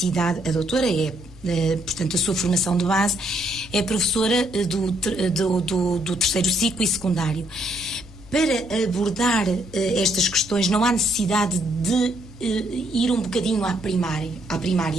a doutora portanto, a sua formação de base é professora do terceiro ciclo e secundário. Para abordar estas questões, não há necessidade de ir um bocadinho à primária,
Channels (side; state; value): both; normal; correlation 0.72